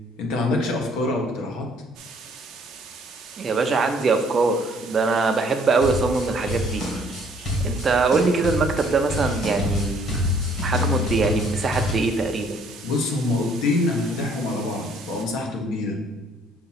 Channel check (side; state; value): both; normal; correlation 0.61